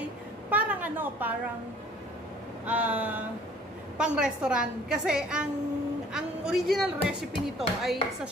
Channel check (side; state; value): both; normal; correlation 0.54